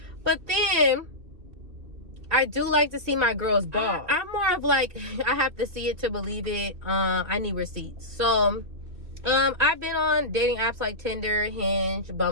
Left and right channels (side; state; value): left; late; 2.7 ms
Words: but then I do like to see my girls ball. I'm more of like, I have to see it to believe it. I need receipts. So I've been on dating apps like Tinder, Hinge,